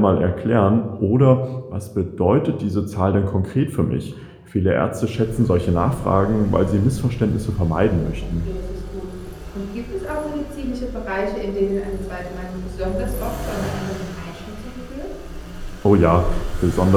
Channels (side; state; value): both; identical; correlation 1.00